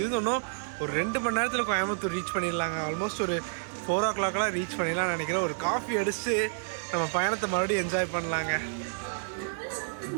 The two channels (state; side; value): silent; left; digital silence